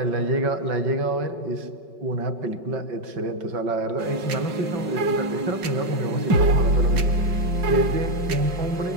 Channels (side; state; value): left; late; 5.3 ms